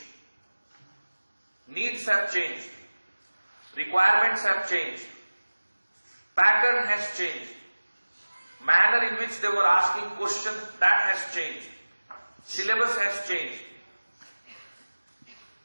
Needs have changed. Requirements have changed. Pattern has changed. Manner in which they were asking questions, that has changed. Syllabus has changed.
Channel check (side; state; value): both; inverted; correlation -1.00